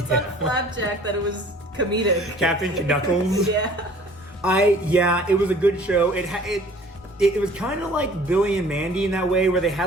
on Flapjack that it was comedic. Captain Knuckles. Yeah. It was a good show. It was kind of like Billy and Mandy in that way, where they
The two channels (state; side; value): normal; both; correlation 0.51